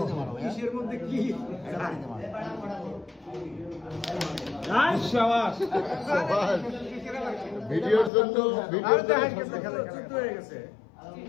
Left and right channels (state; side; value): drops out; right; at 8.1 s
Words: মারো, হ্যাঁ? কিসের মধ্যে কি? বাড়িতে মারো। ভিডিওর জন্য ভিডিওর জন্য হয়ে গেছে।